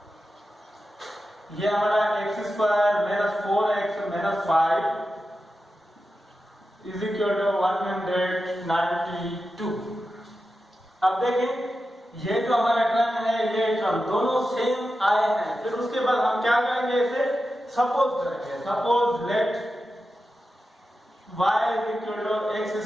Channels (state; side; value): normal; both; correlation 0.91